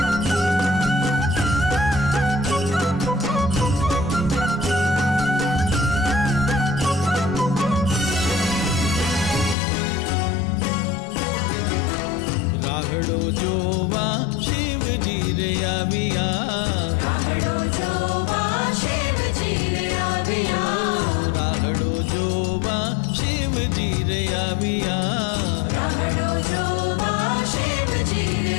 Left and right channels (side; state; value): right; drops out; at 9.6 s